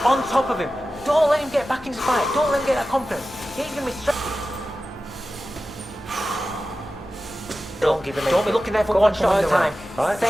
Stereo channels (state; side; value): normal; both; correlation 0.94